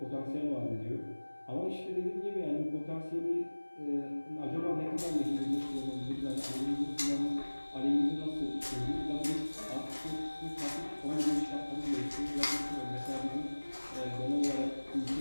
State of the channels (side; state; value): both; inverted; correlation -1.00